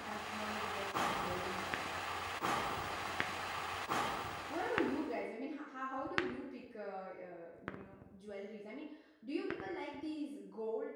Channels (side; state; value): both; identical; correlation 1.00